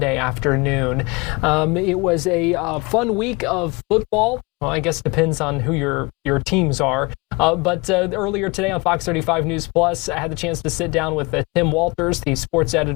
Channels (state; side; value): quieter; right; 26.6 dB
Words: afternoon. It was a fun week of football. Well, I guess it depends on who your teams are. But earlier today on Fox 35 News Plus, I had the chance to sit down with Tim Walters, the sports